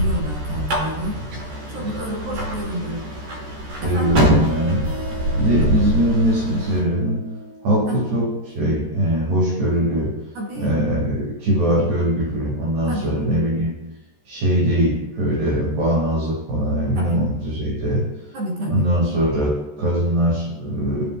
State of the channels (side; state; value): left; late; 13 ms